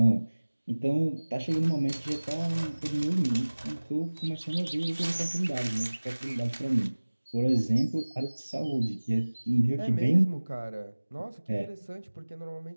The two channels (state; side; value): inverted; both; correlation -1.00